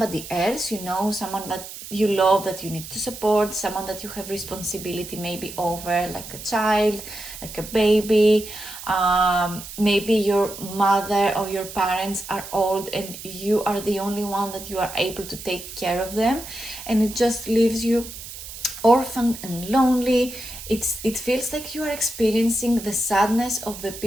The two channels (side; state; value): right; noise; hiss, 12 dB below the sound